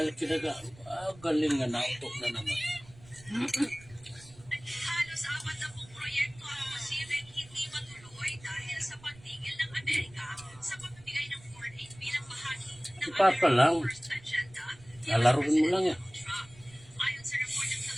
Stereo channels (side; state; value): right; noise; rumble, 23 dB below the sound